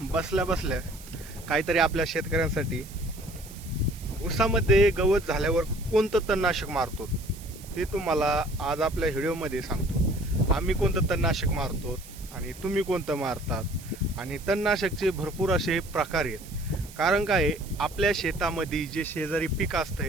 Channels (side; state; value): right; noise; hiss, 18 dB below the sound